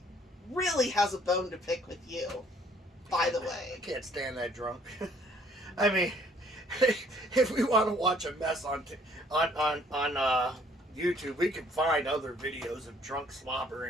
really has a bone to pick with you. By the I way, can't stand that drunk. I mean, if we want to watch a mess on YouTube, we can find other videos of drunk slobber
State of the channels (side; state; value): both; normal; correlation 0.61